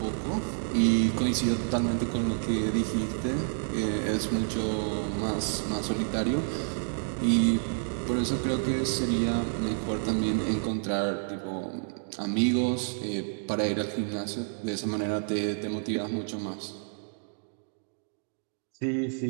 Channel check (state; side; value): silent; left; digital silence